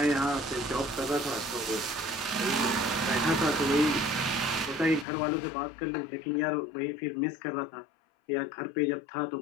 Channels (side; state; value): right; drops out; at 5.1 s